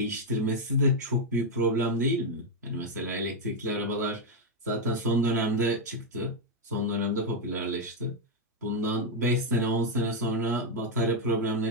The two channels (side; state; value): both; normal; correlation 0.01